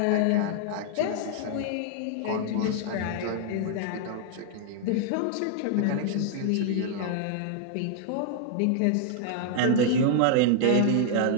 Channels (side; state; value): both; different; correlation 0.00